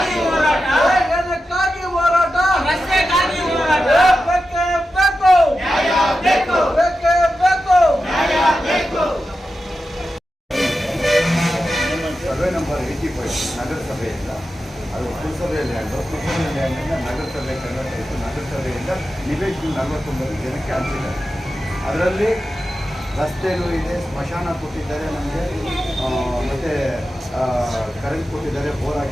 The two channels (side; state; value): both; normal; correlation 0.91